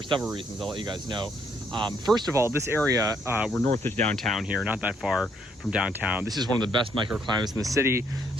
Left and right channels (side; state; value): both; normal; correlation 0.70